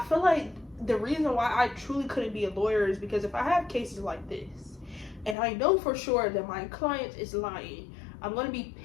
feel like the reason why I truly couldn't be a lawyer is because if I have cases like this and I know for sure that my client is lying, I'm going to be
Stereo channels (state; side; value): drops out; right; at 5.4 s